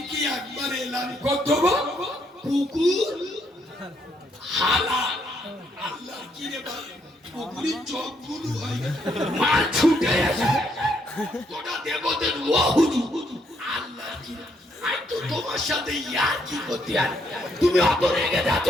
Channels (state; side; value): normal; both; correlation 0.73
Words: একবার এলাম করে দেবো, কুকুর হালাল। আল্লাহ কি রে ভাই, কুকুরের চোখ গুলো হয় মার ছুটে আসে, তোরা দেবদের ও হুজুর। আল্লাহ কি রে, আই তো তোমার সাথে ইয়ার কি করতে আর তুমি অত রেগে যাচ্ছ